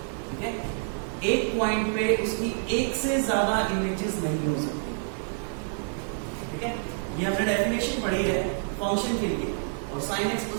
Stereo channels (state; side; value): silent; left; 56 dB below the other